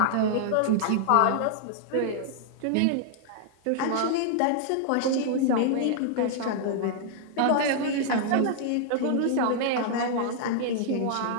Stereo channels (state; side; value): different; both; correlation -0.01